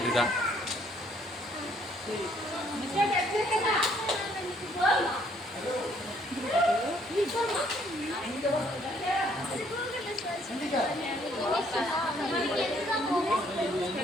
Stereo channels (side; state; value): both; normal; correlation 0.65